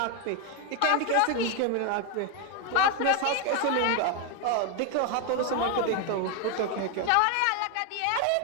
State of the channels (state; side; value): different; both; correlation 0.01